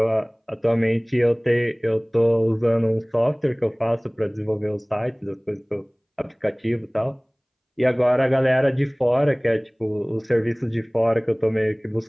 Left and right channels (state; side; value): identical; both; correlation 1.00